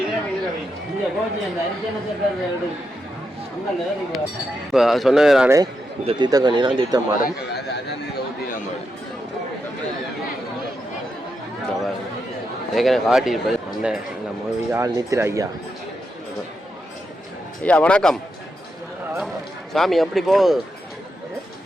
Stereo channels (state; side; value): normal; both; correlation 0.85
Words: இப்போ சொன்னது நானே இந்த தீர்த்தக்கண்ணினா தீர்த்தம் மாடும். ஏற்கனவே காட்டியிருப்பது அண்ணன் நம்ம ஆள் நித்திர ஐயா. ஐயா வணக்கம். சாமி எப்படி போகுது